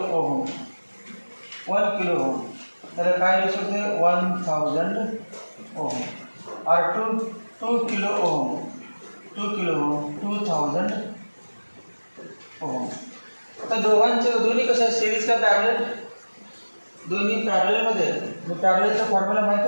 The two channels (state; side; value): inverted; both; correlation -1.00